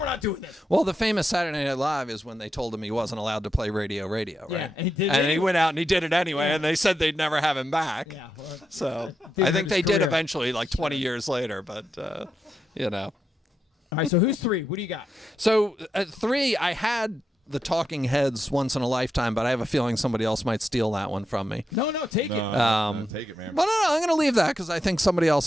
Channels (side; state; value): both; normal; correlation 0.85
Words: not doing this. Well, the famous Saturday Night Live is when they told him he wasn't allowed to play Radio, right? Yeah, and he did it And he anyway. went out and he did it anyway, Yeah. and they said they'd never have him back. Yeah. Well, So Didn't I think hurt they his did career. eventually, like 20 years later, but, you know. all right. So who's 3? What do you got? So at 3, I had the Talking Heads Once in a Lifetime, but I have a feeling somebody else might steal that one from me. No, take No, it. no, take it, man. But no, I'm going to leave that because I think somebody